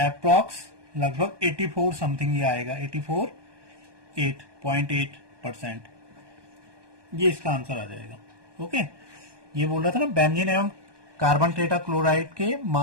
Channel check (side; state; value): left; late; 1.2 ms